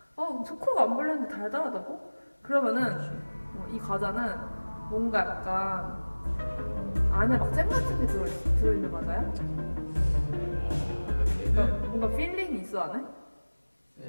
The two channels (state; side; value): inverted; both; correlation -1.00